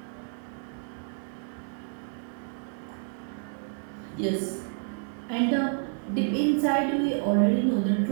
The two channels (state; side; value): silent; left; 58 dB below the other